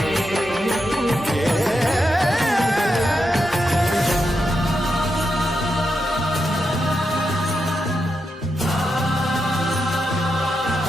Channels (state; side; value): normal; both; correlation 0.85